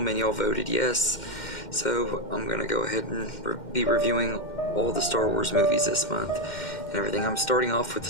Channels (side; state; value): right; late; 2.1 ms